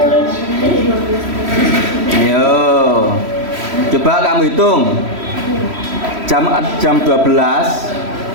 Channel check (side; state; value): left; late; 3.1 ms